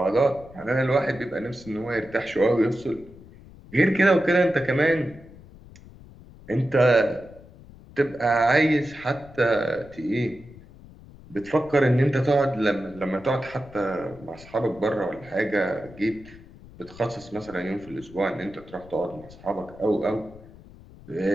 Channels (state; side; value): noise; left; rumble, 20 dB below the sound